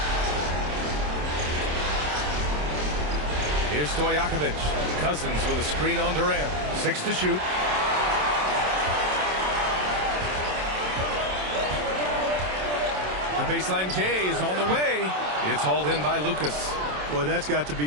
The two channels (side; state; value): left; late; 27 ms